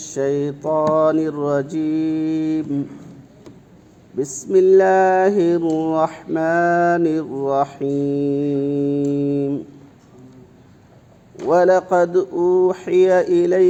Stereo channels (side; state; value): both; identical; correlation 1.00